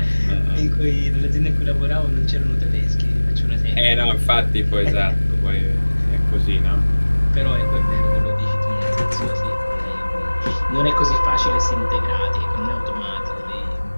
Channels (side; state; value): both; inverted; correlation -1.00